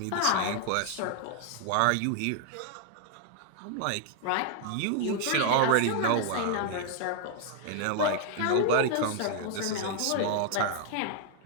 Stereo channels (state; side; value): different; both; correlation 0.00